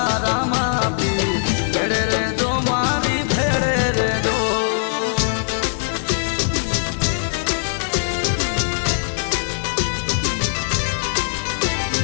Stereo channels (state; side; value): silent; right; digital silence